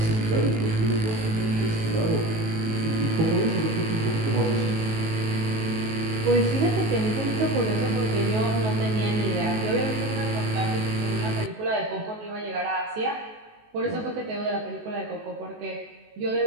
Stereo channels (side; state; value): left; late; 19 ms